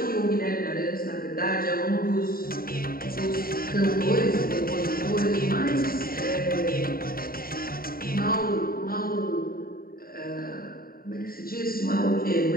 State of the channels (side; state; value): right; late; 0.43 ms